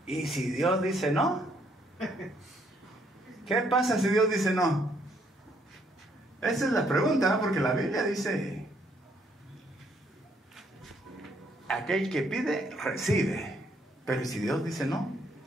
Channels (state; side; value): normal; both; correlation 0.69